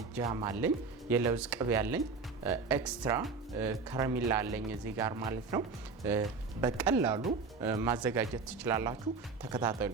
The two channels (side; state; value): left; quieter; 4.6 dB